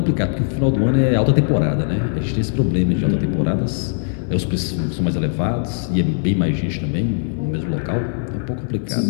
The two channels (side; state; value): right; silent; 60 dB below the other